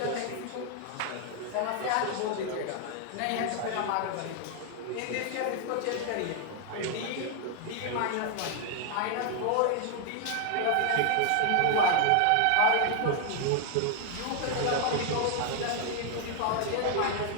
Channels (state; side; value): different; both; correlation 0.00